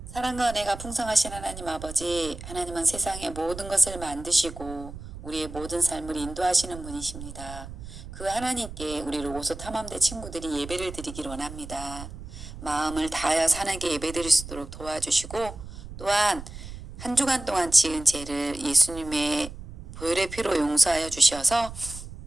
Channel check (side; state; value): right; noise; rumble, 12 dB below the sound